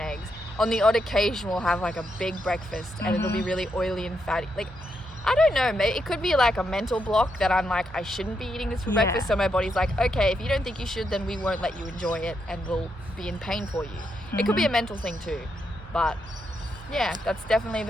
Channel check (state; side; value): normal; both; correlation 0.81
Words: On the odd occasion, we'll have like a big breakfast and it'll be really oily and fatty. Like, I don't know, maybe it could be like a mental block that I'm like, I shouldn't be eating this for breakfast. So my body's like, okay, if you don't think you should, then we won't let you enjoy it and we'll be in pain for you. It could be a mental thing too. But yeah, that's definitely